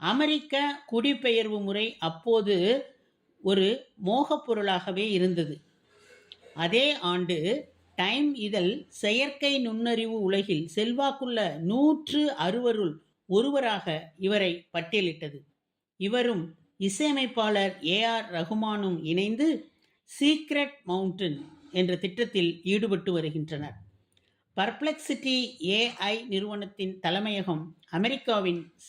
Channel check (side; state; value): both; identical; correlation 1.00